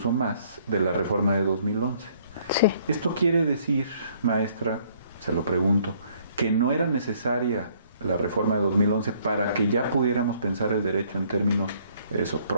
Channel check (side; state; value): both; inverted; correlation -0.63